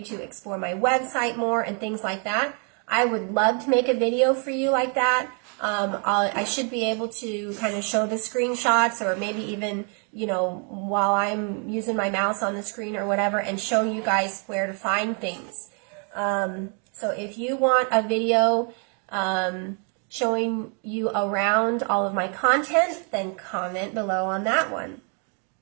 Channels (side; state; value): left; quieter; 39.5 dB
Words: to explore my website more and things like that, I would love to make a video for you like that. I should be able to kind of show the screenshots, or maybe even, while I'm using my mouse on the screen or whatever, and show you guys where to find things. So if you want a video showing you around all of my content, then comment below on that one.